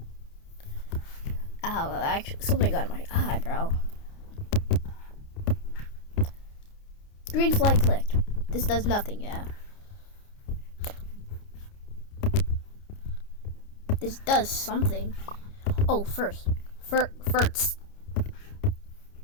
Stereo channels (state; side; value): late; right; 29 ms